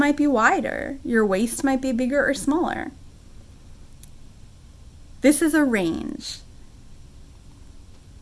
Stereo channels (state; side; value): identical; both; correlation 1.00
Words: be wider. Your waist might be bigger or smaller. This is a range.